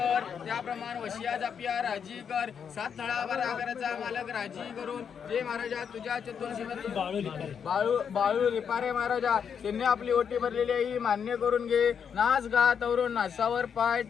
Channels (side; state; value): right; quieter; 7.3 dB